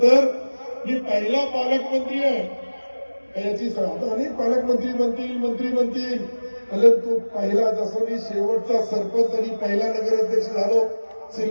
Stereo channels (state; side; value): inverted; both; correlation -1.00